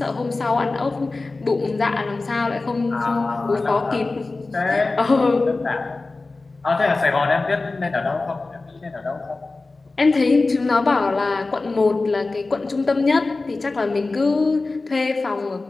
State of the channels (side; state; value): right; quieter; 3.5 dB